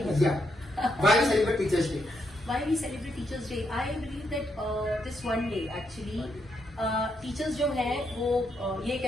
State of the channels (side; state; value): both; normal; correlation 0.79